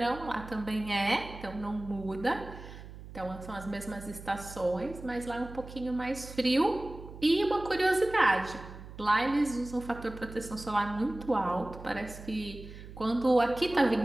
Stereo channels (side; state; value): right; noise; hum, 14 dB below the sound